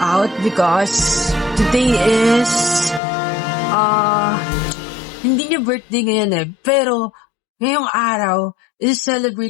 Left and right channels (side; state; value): right; drops out; at 3.0 s